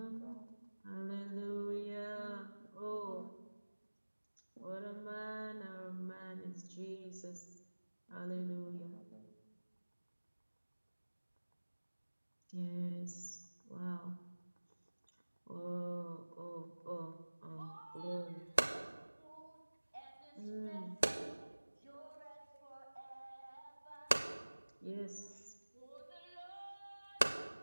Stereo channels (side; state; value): both; inverted; correlation -1.00